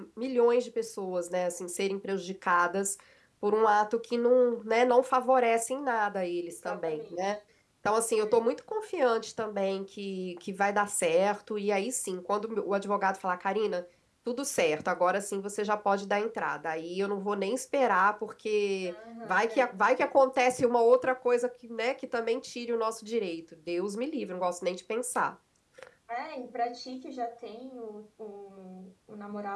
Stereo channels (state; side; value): identical; both; correlation 1.00